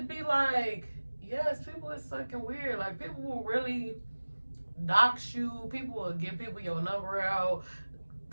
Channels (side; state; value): both; inverted; correlation -1.00